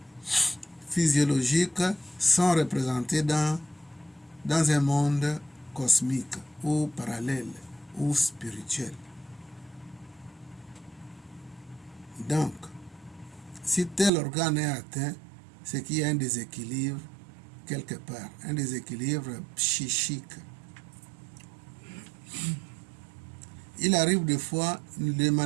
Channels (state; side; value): drops out; left; at 14.1 s